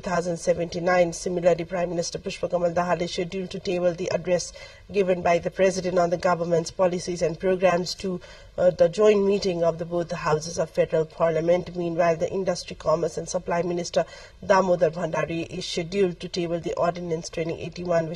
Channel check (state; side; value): identical; both; correlation 1.00